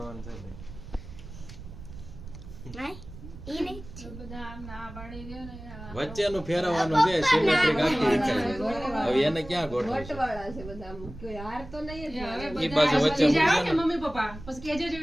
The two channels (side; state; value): right; noise; rumble, 14 dB below the sound